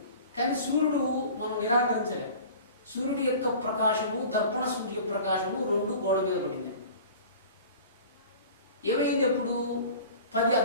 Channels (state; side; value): inverted; both; correlation -0.42